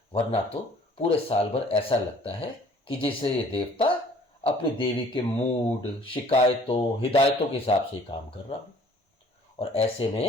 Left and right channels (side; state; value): both; normal; correlation 0.55